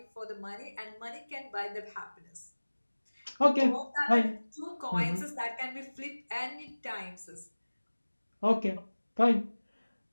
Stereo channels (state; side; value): inverted; both; correlation -1.00